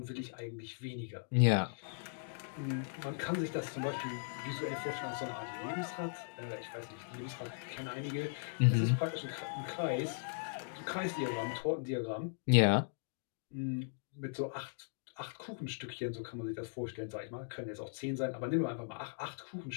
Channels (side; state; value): right; silent; digital silence